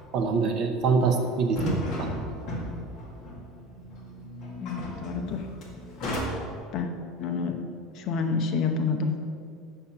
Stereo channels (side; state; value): both; normal; correlation 0.33